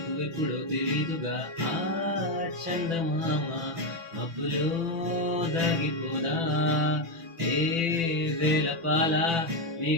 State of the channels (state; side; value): late; left; 6.0 ms